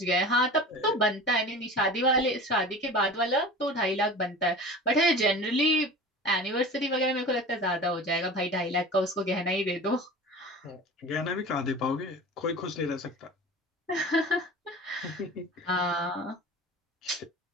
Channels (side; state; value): both; normal; correlation 0.36